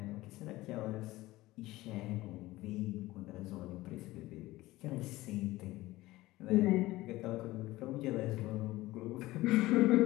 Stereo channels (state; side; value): quieter; right; 18.1 dB